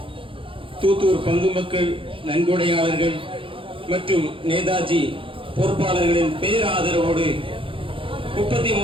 தூத்தூர் பங்கு மக்கள், நன்கொடையாளர்கள் மற்றும் நேதாஜி பொறுப்பாளர்களின் பேராதரவோடு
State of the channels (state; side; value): late; left; 0.25 ms